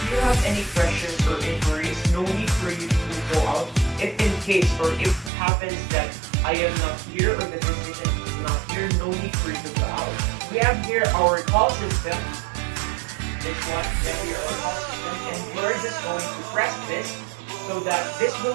you have any questions or inquiries, no need for you to go out. If in case or if it happens that I am not here or the physician is not here, no need for you to go out. We have here our call system. This one, we have here our call system, and we're just going to press this so that this will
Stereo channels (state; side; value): drops out; left; at 5.3 s